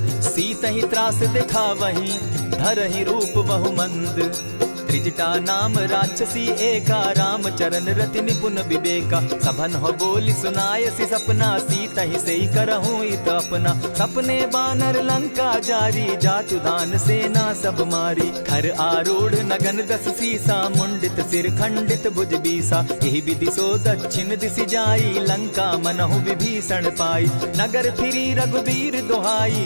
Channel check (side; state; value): both; inverted; correlation -1.00